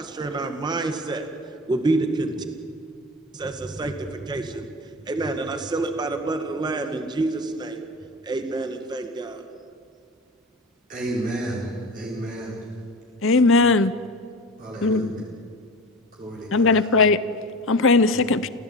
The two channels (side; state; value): both; normal; correlation 0.30